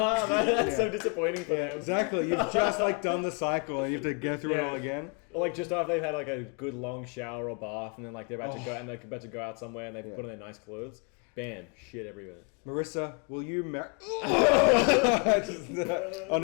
so disappointing for them. Exactly. You've just like done the cycle and you have to go through it all again. Or like just after they've had like a good long shower or bath, and then like they're about to go and they're about to go out somewhere, and they put on their nice clothes. Bam, shit everywhere. Marissa, will you marry? On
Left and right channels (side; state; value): right; quieter; 36.1 dB